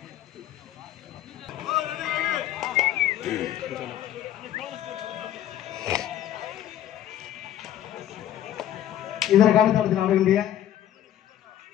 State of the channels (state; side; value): quieter; right; 11.6 dB